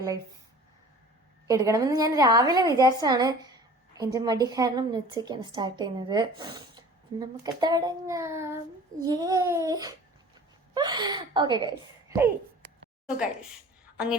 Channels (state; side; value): normal; both; correlation 0.44